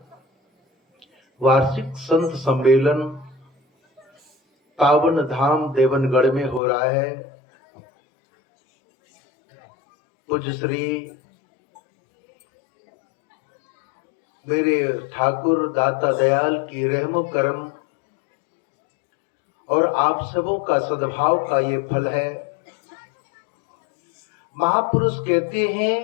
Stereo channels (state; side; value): drops out; right; at 6.6 s